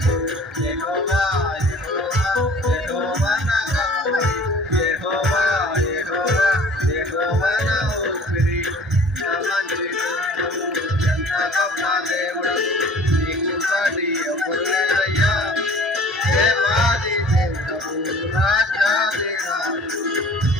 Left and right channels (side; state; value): both; normal; correlation 0.48